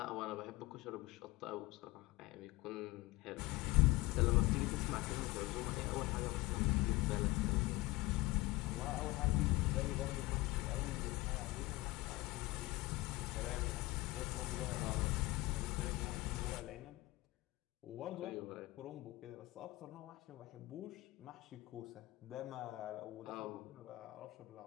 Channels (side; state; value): right; quieter; 20.5 dB